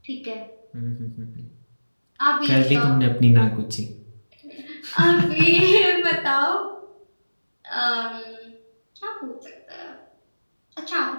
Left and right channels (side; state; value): both; inverted; correlation -1.00